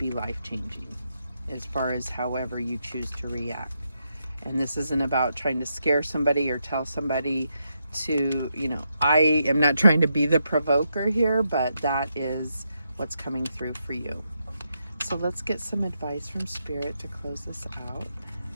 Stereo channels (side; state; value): both; inverted; correlation -0.82